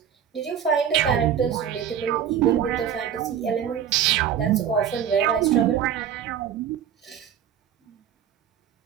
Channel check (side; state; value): left; quieter; 9.0 dB